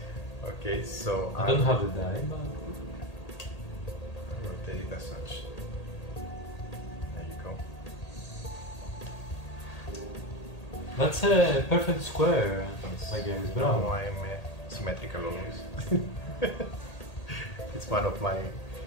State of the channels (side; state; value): right; late; 1.8 ms